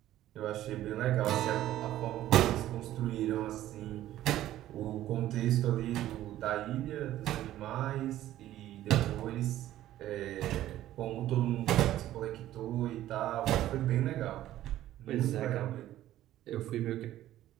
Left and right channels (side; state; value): left; quieter; 13.6 dB